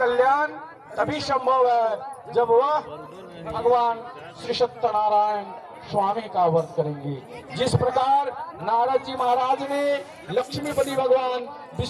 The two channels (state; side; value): identical; both; correlation 1.00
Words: तभी संभव है जब वह भगवान श्री सत्यनारायण स्वामी का व्रत करेंगे। जिस प्रकार नारद जी महाराज ने लक्ष्मीपति भगवान